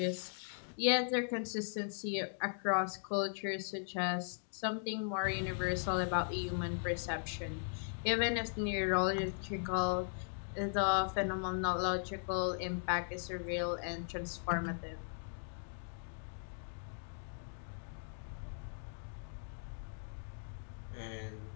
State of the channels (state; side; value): silent; right; digital silence